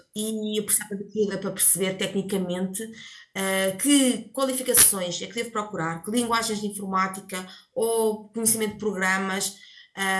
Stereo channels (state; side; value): identical; both; correlation 1.00